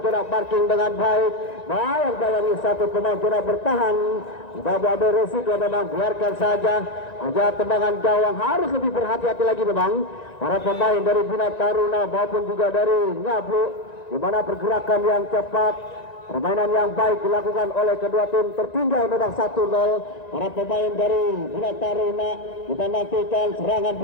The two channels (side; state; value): right; late; 1.9 ms